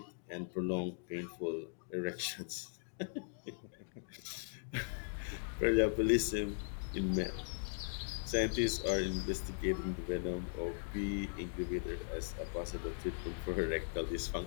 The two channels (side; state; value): right; silent; digital silence